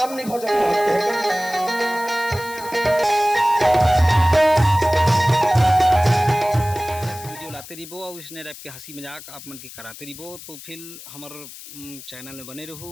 नहीं भजन करते रहिबो और इसने टाइप के हंसी मजाक आप मन के कराते रहिबो। तो फिर हमार चैनल में बने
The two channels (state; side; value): noise; left; hiss, 15 dB below the sound